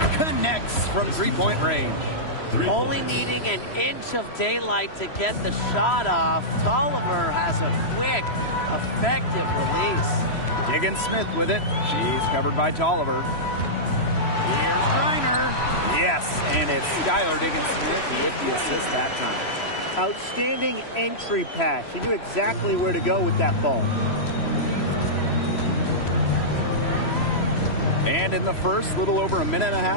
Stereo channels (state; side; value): late; right; 3.0 ms